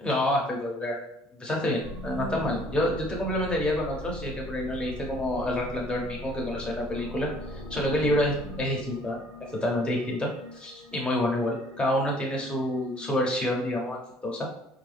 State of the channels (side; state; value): both; normal; correlation 0.58